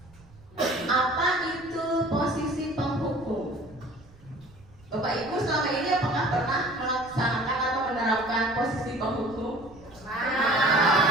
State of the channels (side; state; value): right; noise; rumble, 25 dB below the sound